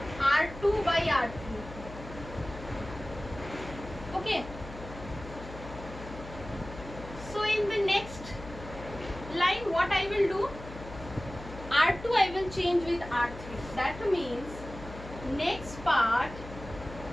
R2 by R3. Okay. So in the next line, what I will do? R2 I will change with R3. That means next part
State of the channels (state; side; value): noise; left; hum, 13 dB below the sound